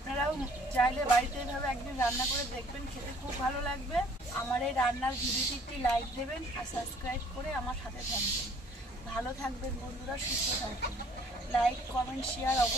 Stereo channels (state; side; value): normal; both; correlation 0.57